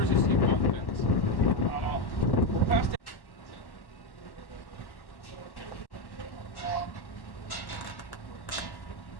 is equal fence. We'll pass the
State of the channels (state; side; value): late; right; 1.1 ms